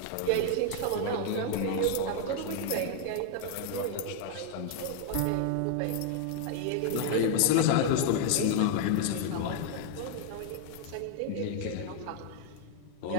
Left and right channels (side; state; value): both; different; correlation 0.00